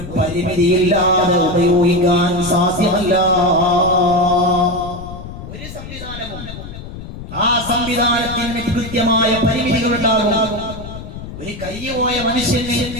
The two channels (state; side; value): noise; left; rumble, 11 dB below the sound